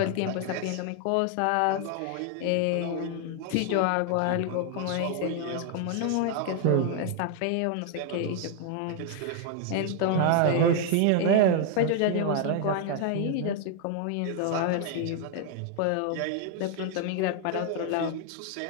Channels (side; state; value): both; different; correlation 0.00